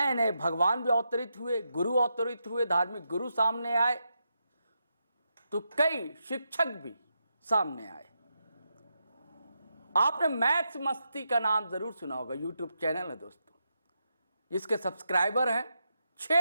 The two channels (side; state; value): both; inverted; correlation -0.84